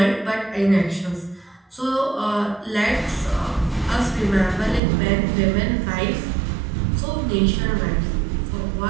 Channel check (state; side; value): drops out; left; at 4.8 s